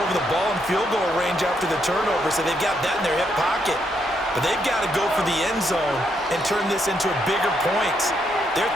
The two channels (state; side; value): normal; both; correlation 0.76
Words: the ball in field goal range after the turnover, so they've got that in their hip pocket. But they've got to go for the end zone and turn this into a bigger points. Their